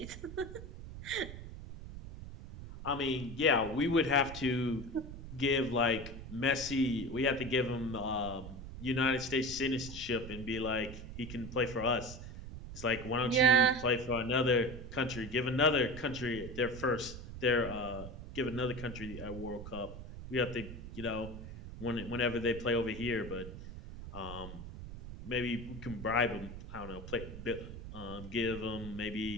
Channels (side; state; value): right; noise; rumble, 11 dB below the sound